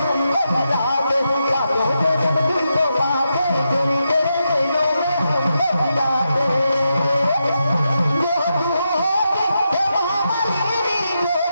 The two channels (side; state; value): both; inverted; correlation -0.86